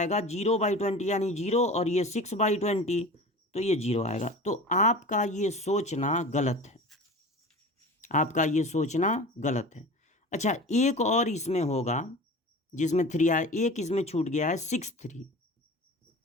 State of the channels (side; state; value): both; normal; correlation 0.36